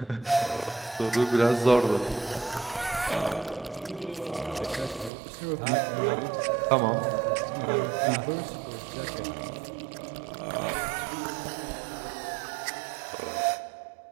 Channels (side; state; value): left; drops out; at 5.1 s